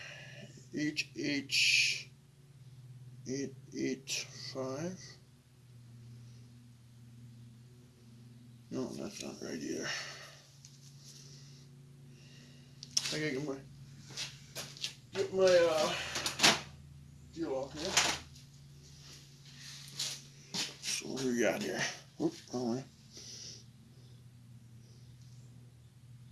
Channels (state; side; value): identical; both; correlation 1.00